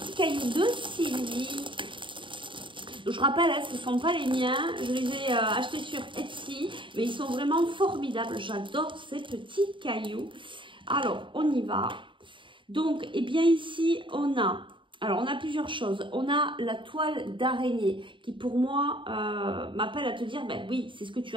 cailloux de Sylvie. Je rappelle, ce ne sont pas les miens, je les ai achetés sur Etsy, mais ils sont vraiment formidables. J'adore ces petits cailloux. Alors, on y va. Donc, bien ici, on a plusieurs choses. On a la toile d'araignée qui, pour moi, m'appelle à te dire, oui, c'est ce que tu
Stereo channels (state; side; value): late; left; 0.24 ms